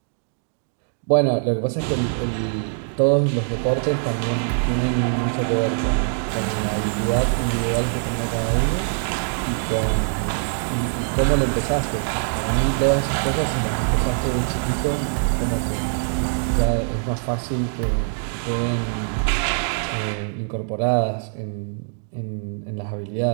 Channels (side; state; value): left; silent; digital silence